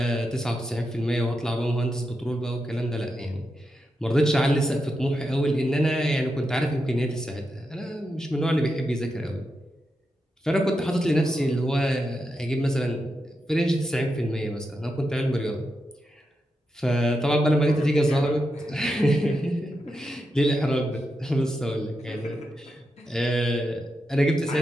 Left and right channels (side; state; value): both; normal; correlation 0.86